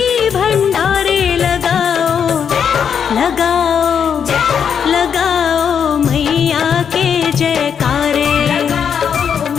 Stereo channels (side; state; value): right; quieter; 7.5 dB